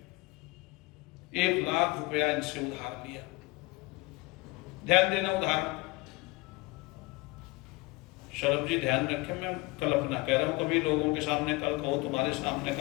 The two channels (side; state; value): right; quieter; 23.2 dB